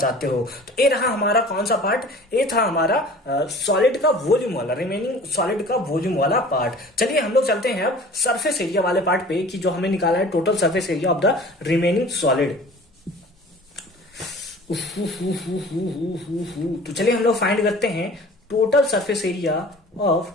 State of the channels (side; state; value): both; normal; correlation 0.44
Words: हो। तो ये रहा हमारा कौन सा पार्ट, ये था हमारा सॉलिड का वॉल्यूम वाला, रिमेनिंग सॉलिड का वॉल्यूम वाला पार्ट। चलिए हम लोग चलते हैं अब सरफेस एरिया वाले पार्ट पे, कि जो हमें निकाला है total surface area of the remaining solid. तो चलिए हम लोग फाइंड करते हैं total surface area of